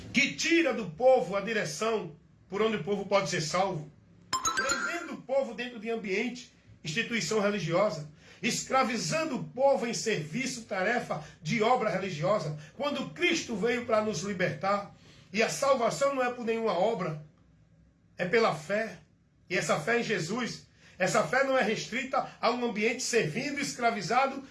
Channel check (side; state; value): both; identical; correlation 1.00